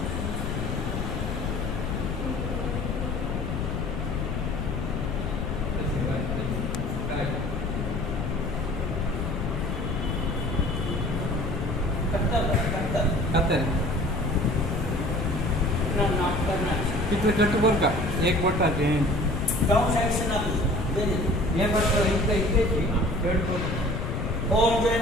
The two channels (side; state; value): left; noise; rumble, 2 dB below the sound